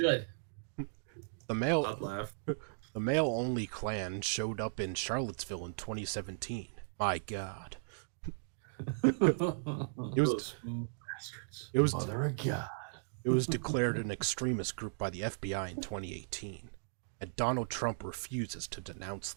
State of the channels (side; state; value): left; silent; digital silence